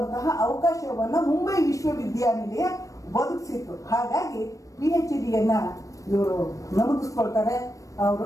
ಅವಕಾಶವನ್ನ ಮುಂಬೈ ವಿಶ್ವವಿದ್ಯಾನಿಲಯ ಒದಗಿಸಿತ್ತು. ಹಾಗಾಗಿ PhDಯನ್ನ ಇವರು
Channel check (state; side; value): late; right; 0.16 ms